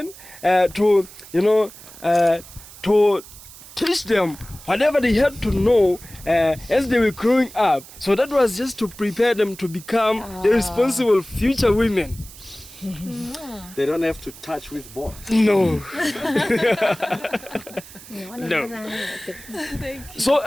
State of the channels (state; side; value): noise; right; hiss, 18 dB below the sound